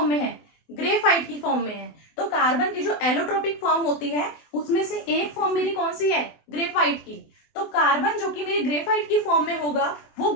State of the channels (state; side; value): late; right; 24 ms